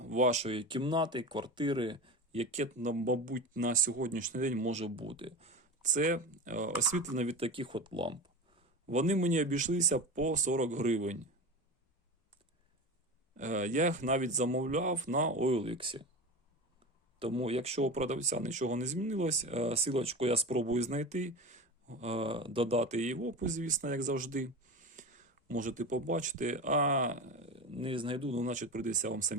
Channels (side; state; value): both; normal; correlation 0.27